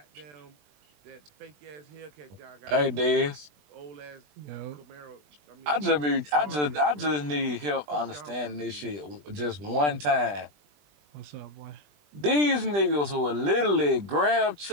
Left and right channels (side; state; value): left; late; 20 ms